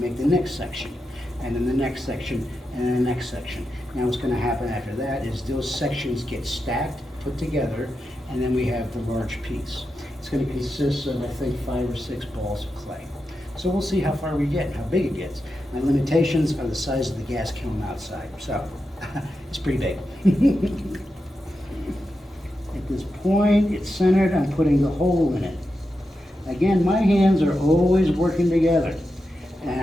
the next section. And then the next section, and then the next section. Now what's going to happen after that is those sections get stacked, put together, and then we have the large piece. It's going to consist of, I think, 5 or 6 balls of clay. So we'll see how far we get and how big it gets. My limitations are the size of the gas kiln outside, so it's pretty big. At this point, it's centered, I'm putting the hole in it. Again, my hands are always working together, and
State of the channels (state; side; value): normal; both; correlation 0.89